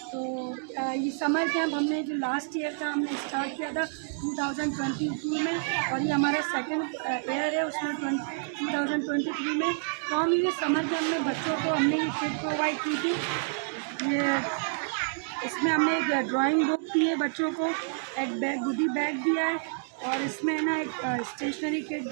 तो ये समर कैंप हमने जो लास्ट ईयर था हमने स्टार्ट किया था 2022 में, और ये हमारा सेकंड ईयर है उसमें 2023 में। तो हम ये समर कैंप में बच्चों को हमने ये किट प्रोवाइड की थी। ये इसमें हमने एक ड्राइंग बुक दी है बच्चों को, एक बैग गुडी बैग दिया है, और इसमें ना एक स्टेशनरी किट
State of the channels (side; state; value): left; silent; digital silence